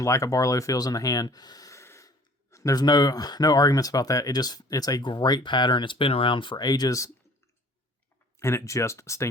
like a Barlow feels in the hand. There's no arguments about that. It's a great pattern. It's been around for ages, and it just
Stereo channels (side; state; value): both; normal; correlation 0.51